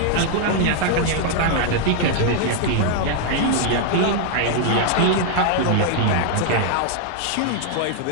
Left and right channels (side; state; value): both; different; correlation 0.00